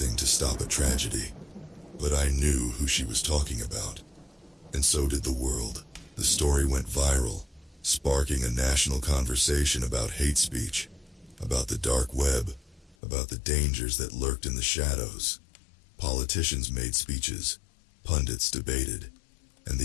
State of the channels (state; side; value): drops out; right; at 13.0 s